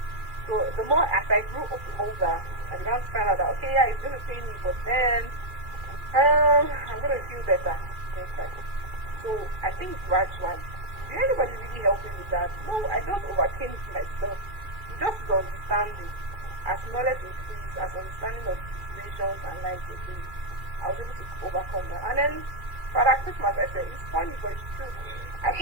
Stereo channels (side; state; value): left; late; 2.4 ms